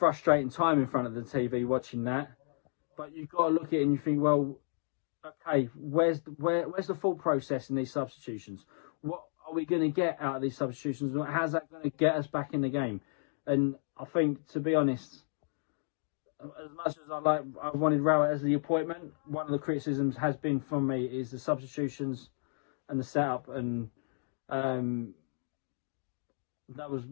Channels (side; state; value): right; silent; digital silence